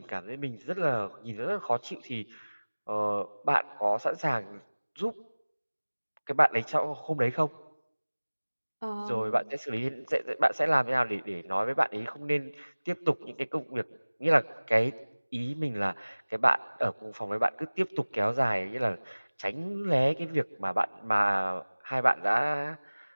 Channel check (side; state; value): both; inverted; correlation -1.00